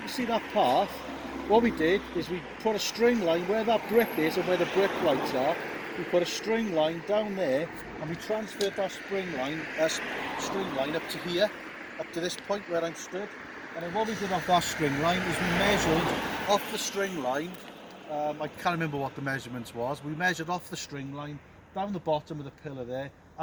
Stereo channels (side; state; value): both; identical; correlation 1.00